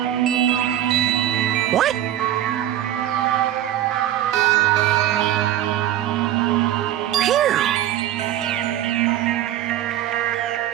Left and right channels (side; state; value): left; quieter; 12.3 dB